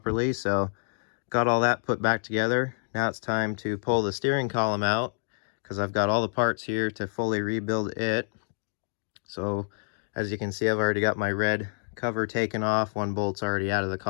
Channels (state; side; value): silent; right; digital silence